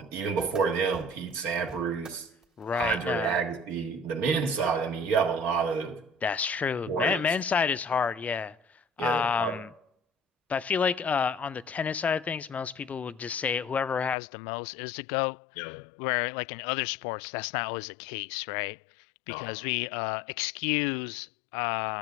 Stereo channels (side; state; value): right; drops out; at 14.2 s